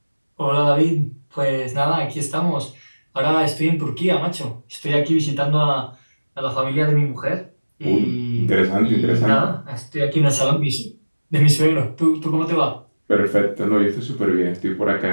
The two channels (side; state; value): both; inverted; correlation -1.00